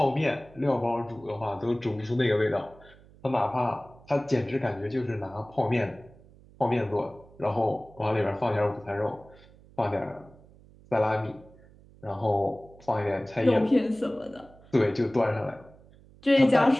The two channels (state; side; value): noise; right; hum, 25 dB below the sound